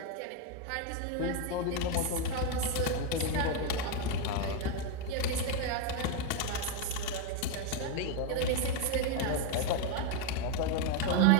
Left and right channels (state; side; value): different; both; correlation 0.02